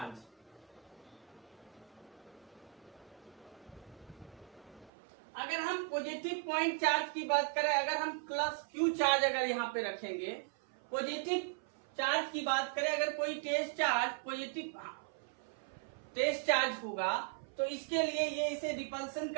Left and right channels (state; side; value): drops out; left; at 4.9 s